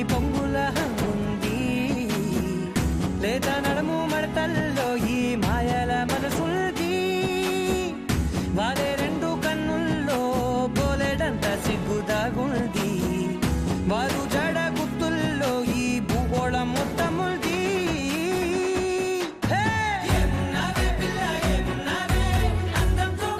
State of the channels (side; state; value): both; identical; correlation 1.00